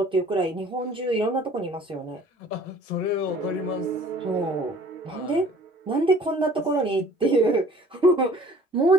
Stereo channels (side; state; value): both; normal; correlation 0.52